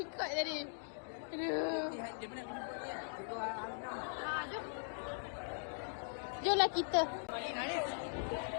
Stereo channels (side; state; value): right; silent; digital silence